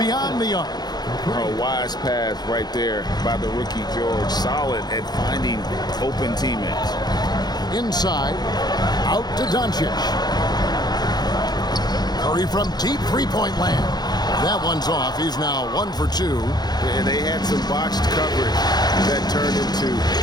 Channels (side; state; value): right; late; 0.20 ms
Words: the arc. A wise pass right there by the rookie George. Solid at finding open teammates. Inside. Out to Doncic. Curry from deep three-point land. That one's off. He's now 1 for 2. And they had some botched coverage that turned into